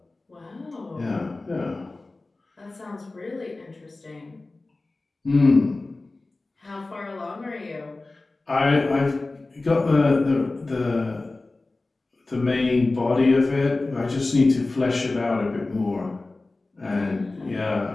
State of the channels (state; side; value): quieter; right; 3.2 dB